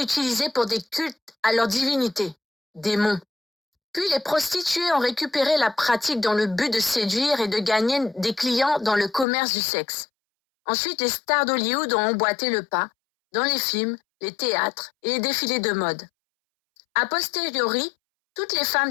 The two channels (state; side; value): drops out; right; at 9.2 s